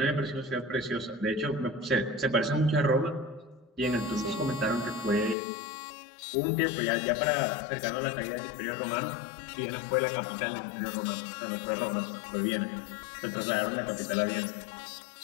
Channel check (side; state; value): right; drops out; at 5.4 s